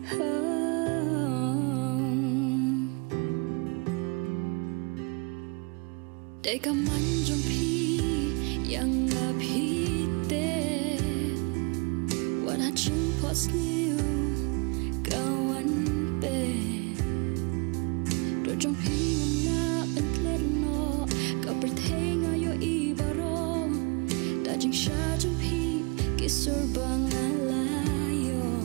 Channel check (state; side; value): quieter; left; 31.1 dB